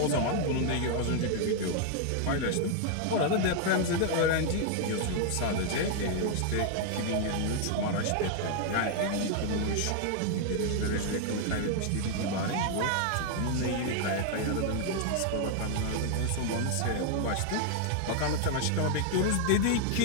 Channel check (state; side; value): different; both; correlation 0.00